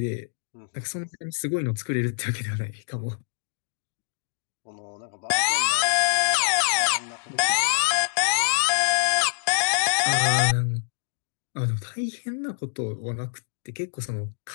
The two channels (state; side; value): silent; right; digital silence